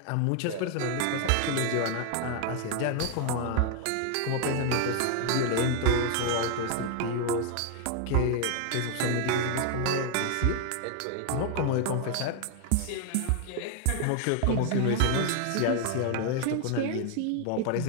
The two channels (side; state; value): both; different; correlation 0.00